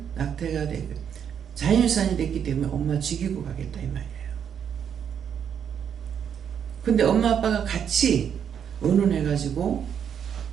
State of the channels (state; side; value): quieter; left; 8.2 dB